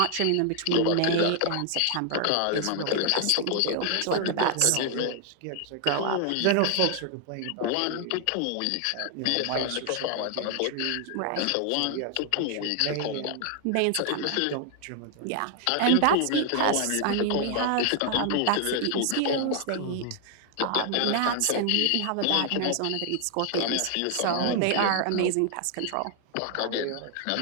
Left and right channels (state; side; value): different; both; correlation 0.00